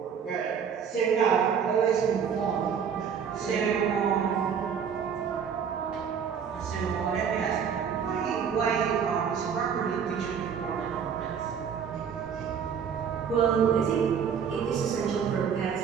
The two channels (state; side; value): quieter; left; 7.2 dB